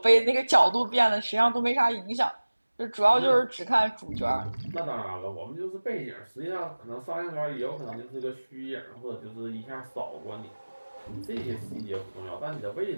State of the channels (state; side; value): inverted; both; correlation -1.00